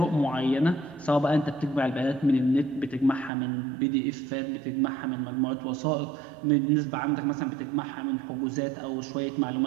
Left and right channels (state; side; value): drops out; left; at 3.3 s